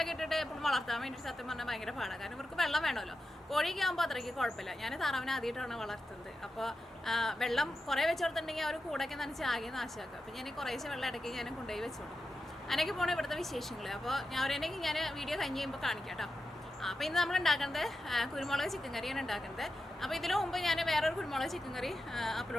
ഇട്ടിട്ട് എപ്പോഴും വളർത്താൻ വേണ്ടിയിട്ട് സത്യം പറഞ്ഞാൽ ഭയങ്കര പാടാണ്. കാരണം ഇവർക്ക് വെള്ളം വേണമല്ലോ. കോഴിയൊക്കെ ആകുമ്പോൾ അത്രയ്ക്ക് കുഴപ്പമില്ല. ഞാൻ താറാവിനെ ആദ്യമായിട്ടാണ് വളർത്തുന്നത്. അപ്പോൾ വെള്ളം കുറേ വെച്ച് കൊടുത്തിട്ടുണ്ടെങ്കിൽ അവർ കൂടൊക്കെ നനച്ച് ആകെ നാശമാക്കുക. അപ്പോൾ ഞാൻ കുറേശ്ശെ വെള്ളം ഇടയ്ക്ക് ഞാൻ കൊണ്ടുപോയി വെച്ച് കൊടുക്കും. അങ്ങനെയൊക്കെ പോകണം ഇവിടുത്തെ വിശേഷങ്ങൾ. അപ്പോൾ ഞാൻ വീഡിയോ കഴിഞ്ഞ് കഴിയുമ്പോൾ കാണിക്കാം കേട്ടോ. അപ്പോൾ ഇന്ന് നമ്മൾ ഉണ്ടാക്കുന്നത് കുരുമുളക് ചിക്കൻ കറിയാണ് ഉണ്ടാക്കുന്നത്. അപ്പോൾ ഇതിനു മുമ്പ് ഞാൻ വേറൊരു കുരുമുളക് ചിക്കൻ കറി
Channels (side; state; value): both; normal; correlation 0.90